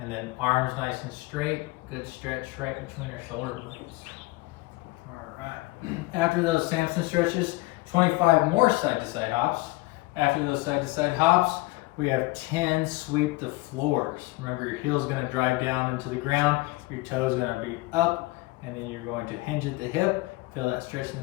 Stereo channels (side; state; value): right; quieter; 21.6 dB